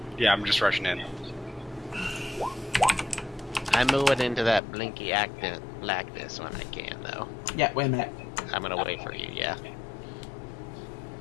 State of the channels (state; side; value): drops out; right; at 4.6 s